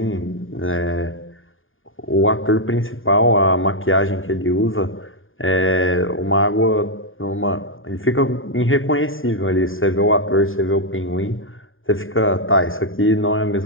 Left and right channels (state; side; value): late; right; 0.59 ms